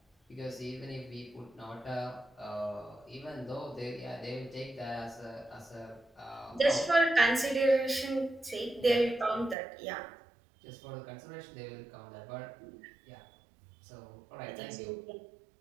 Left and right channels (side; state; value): left; drops out; at 9.6 s